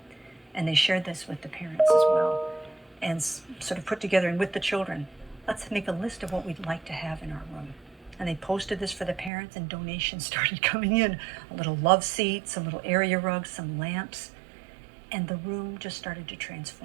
and they shared this with the parents as well, and sort of put together, and with the children, let's make a list of what we'd like to have in our room. And they posted this for the parents, and donations started coming in. A little love seat, some little area rugs, some lamps, and the room just started to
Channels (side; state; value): left; drops out; at 9.3 s